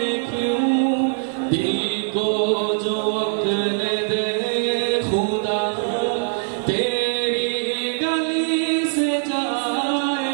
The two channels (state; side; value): silent; left; digital silence